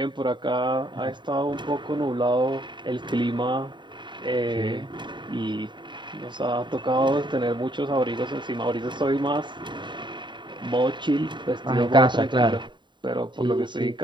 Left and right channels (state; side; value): late; left; 0.23 ms